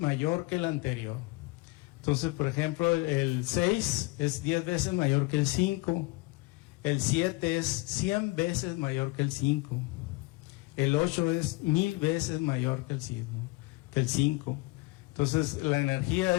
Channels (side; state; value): right; quieter; 23.9 dB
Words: que el anterior. Entonces, por ejemplo, el 6 es 10 veces mayor que el 5, el 7 es 100 veces mayor que el 5, el 8 es 1000 veces mayor que el 5. Entonces, la energía